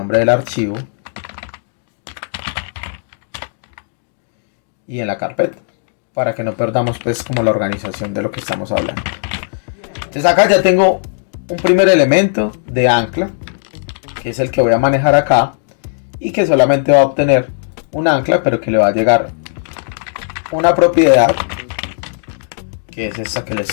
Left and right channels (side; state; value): right; silent; 69 dB below the other